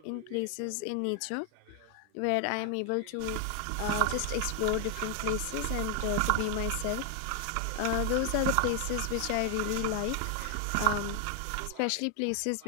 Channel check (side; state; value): both; different; correlation 0.00